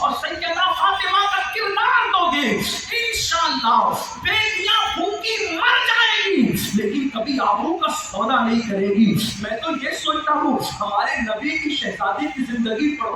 سیدہ فاطمہ کا کردار دو گے، انشاءاللہ بیٹیاں بھوکی مر جائیں گی لیکن کبھی آبرو کا سودا نہیں کرے گی۔ میں تو یہ سوچتا ہوں ہمارے نبی کی شہزادی کی زندگی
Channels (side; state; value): both; identical; correlation 1.00